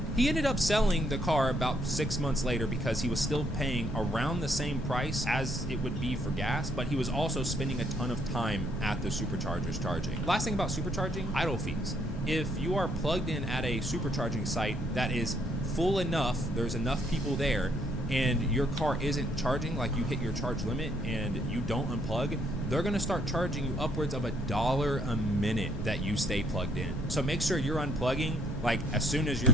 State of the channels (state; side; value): normal; both; correlation 0.69